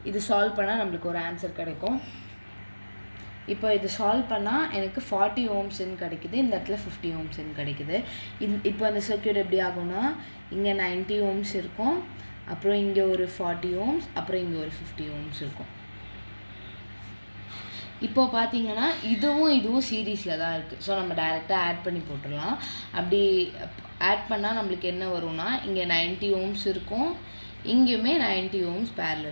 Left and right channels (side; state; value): both; inverted; correlation -1.00